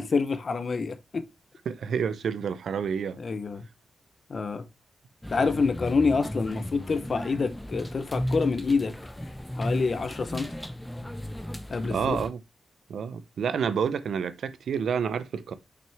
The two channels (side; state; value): both; normal; correlation 0.85